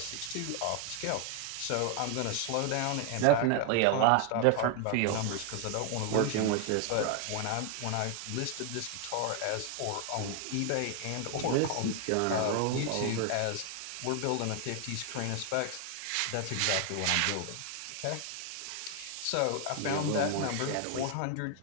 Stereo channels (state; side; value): different; both; correlation 0.00